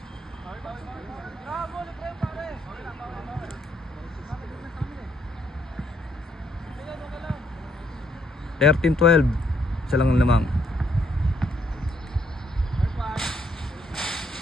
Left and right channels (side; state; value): both; normal; correlation 0.72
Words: (13-12) isa lang lamang.